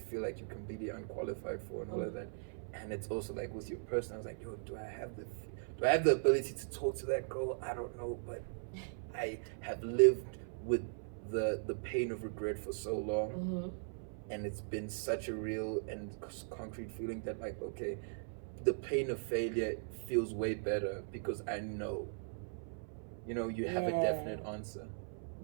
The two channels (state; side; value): silent; left; 52 dB below the other